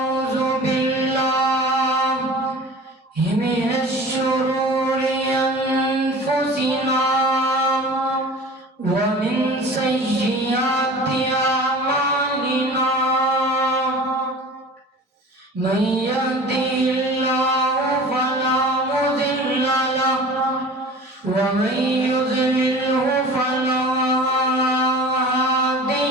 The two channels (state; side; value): normal; both; correlation 0.40